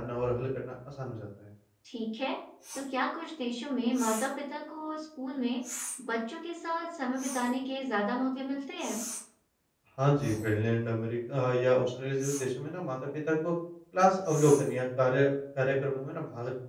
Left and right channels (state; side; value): identical; both; correlation 1.00